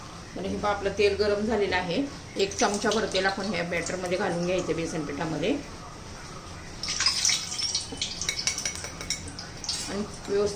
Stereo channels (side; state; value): both; identical; correlation 1.00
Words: तर हे पहा, आपलं तेल गरम झालेलं आहे. 1 चमचाभर तेल आपण ह्या बॅटरमध्ये घालून घ्यायचं, बेसन पिठामध्ये. आणि